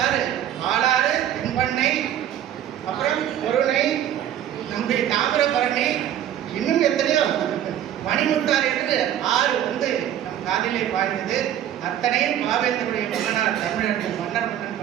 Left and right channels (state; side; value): quieter; left; 10.9 dB